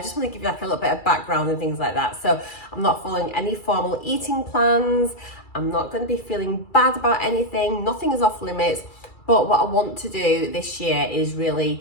just want to give you like a little bit of background and things like that. So I'm not following any formal eating plans. I'm not going to be feeling bad about anything. Nothing is off limits. But what I want to do this year is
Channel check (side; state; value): right; late; 2.3 ms